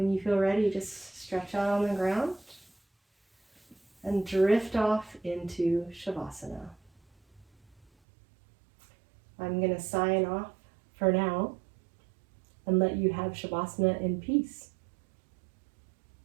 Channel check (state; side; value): drops out; left; at 7.9 s